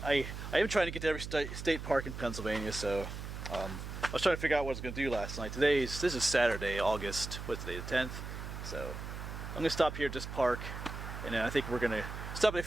am trying to get to every state park in Pennsylvania. So I was trying to figure out what I was going to do last night. This is Saturday, August. What's today? The 10th. So I'm going to stop here at this park, and then I think we're going to stop at a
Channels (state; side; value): noise; right; hum, 8 dB below the sound